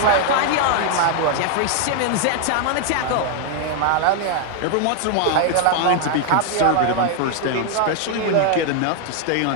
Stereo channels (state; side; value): different; both; correlation 0.00